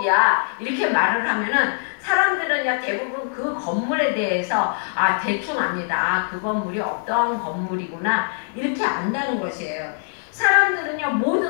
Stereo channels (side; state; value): right; silent; digital silence